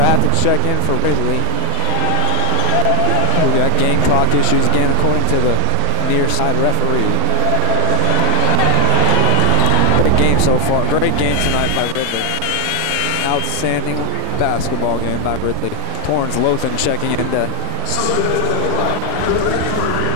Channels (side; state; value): both; different; correlation 0.00